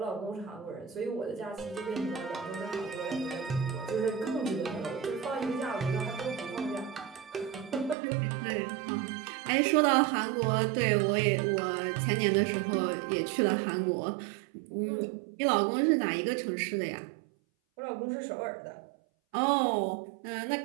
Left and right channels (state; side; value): drops out; left; at 8.0 s